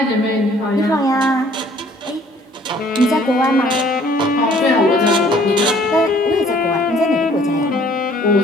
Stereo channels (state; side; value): normal; both; correlation 0.58